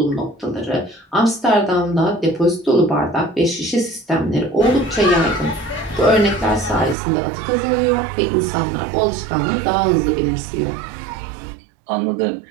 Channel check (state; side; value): drops out; left; at 7.0 s